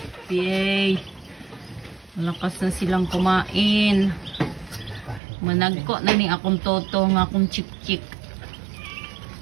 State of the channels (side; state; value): left; drops out; at 5.2 s